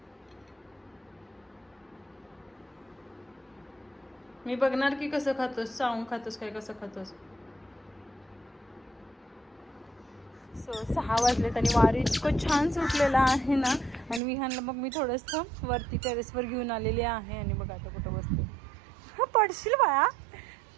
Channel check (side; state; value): left; drops out; at 14.2 s